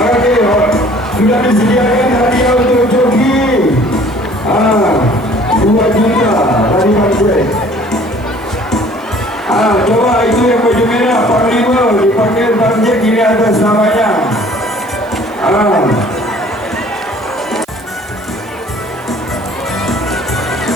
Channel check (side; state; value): right; noise; hiss, 28 dB below the sound